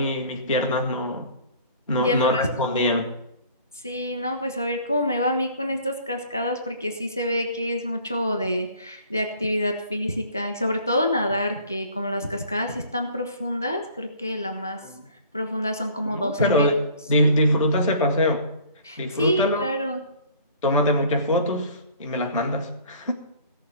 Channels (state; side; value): inverted; both; correlation -0.51